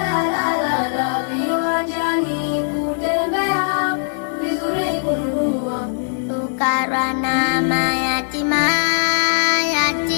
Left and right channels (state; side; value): silent; right; 59 dB below the other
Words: la la la la, viwanjani kutembea, vizuri kununua. Fukara na mayatima